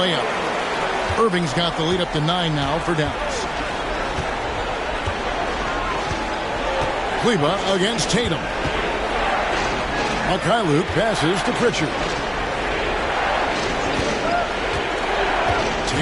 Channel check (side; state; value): both; identical; correlation 1.00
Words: Irving's got the lead up to 9 now for Dallas. Kleber against Tatum. Mikhailuk passes to Pritchard.